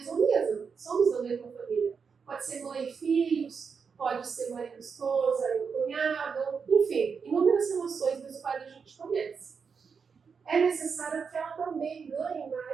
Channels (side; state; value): left; quieter; 5.8 dB